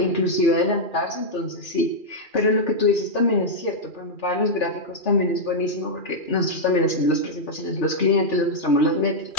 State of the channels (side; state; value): right; late; 2.4 ms